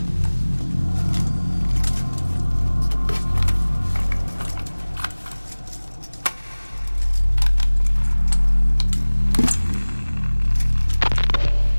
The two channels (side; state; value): both; inverted; correlation -1.00